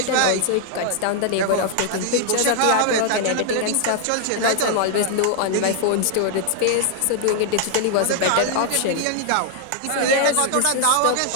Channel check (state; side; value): different; both; correlation -0.01